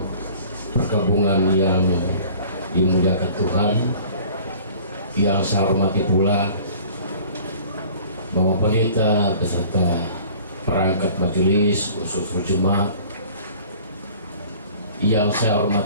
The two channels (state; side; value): inverted; both; correlation -0.48